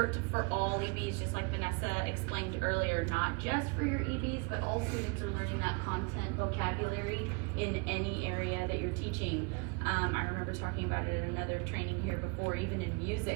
for all EBs, just like Vanessa explained earlier, not just for your EBs, but all students are learning that content vocabulary in any area that you're teaching. I remember talking about it at another training here before, even in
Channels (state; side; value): quieter; left; 31.4 dB